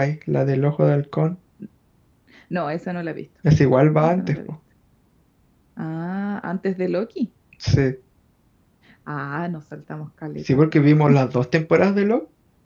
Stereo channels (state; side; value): identical; both; correlation 1.00